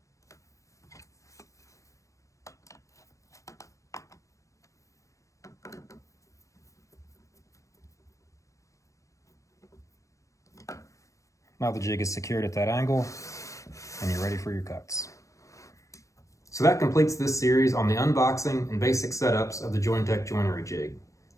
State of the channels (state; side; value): late; right; 0.15 ms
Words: Now the jig is secured at that angle, and you're ready for your cuts. So that completes this series on the unboxing and basic setups of the JOINTEC joinery jig.